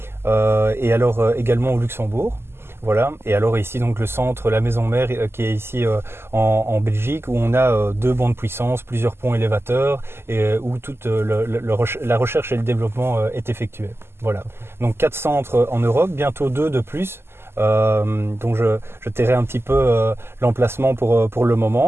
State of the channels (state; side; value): late; left; 0.12 ms